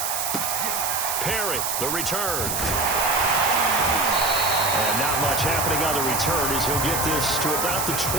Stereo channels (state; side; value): noise; right; hiss, 1 dB below the sound